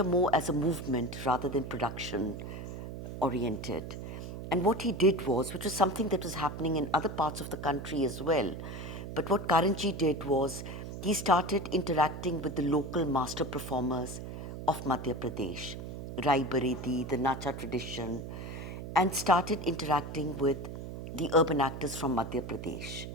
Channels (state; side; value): noise; right; hum, 8 dB below the sound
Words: more as a movement rather than production oriented. And what he did was, which was something that was happening in other parts of the country as well, but what Karanji did was he started interacting with the local master performers of Madhya Pradesh, Rai Baredi, the Nacha tradition, and started interacting with the urban actors from Madhya Pradesh.